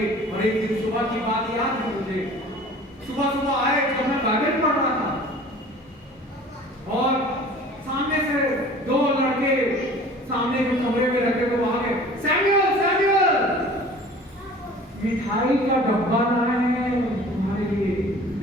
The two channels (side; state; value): both; normal; correlation 0.45